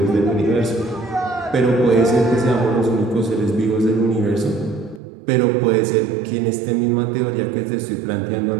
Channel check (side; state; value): left; drops out; at 5.0 s